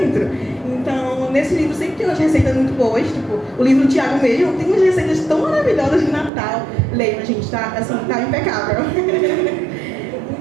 Então, nesse livro sempre tem umas receitas muito boas, tipo, o livro do Tiago mesmo tem umas receitas tão maravilhosas de Natal. Leiam, gente, tá, assim, tá impecável.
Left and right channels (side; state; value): left; drops out; at 6.3 s